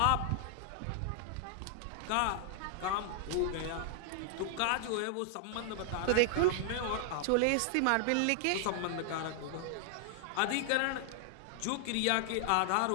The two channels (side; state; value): both; different; correlation 0.00